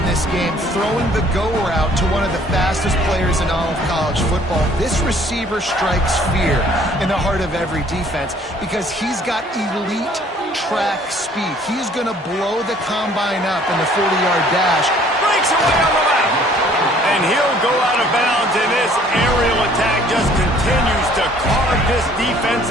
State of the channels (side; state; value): both; normal; correlation 0.58